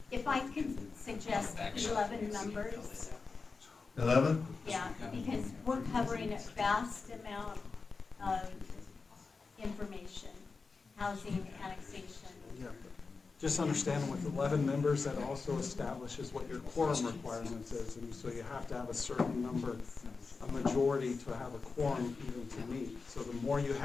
if I can suggest 11 members, 11? yeah, because we're covering a vast amount of information, housing, annexation. Yeah. Just understand with 11 members, that also establishes what your quorum requirements is, and so you have to have a certain number, a majority to have a quorum even to meet. So the more you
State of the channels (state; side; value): quieter; right; 4.4 dB